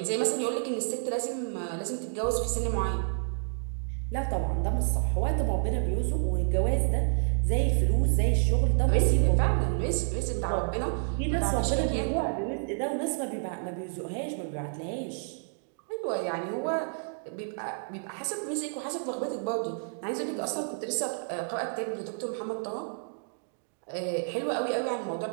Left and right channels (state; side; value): silent; left; digital silence